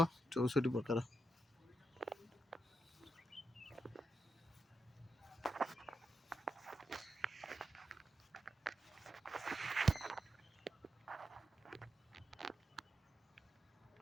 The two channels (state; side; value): normal; both; correlation 0.84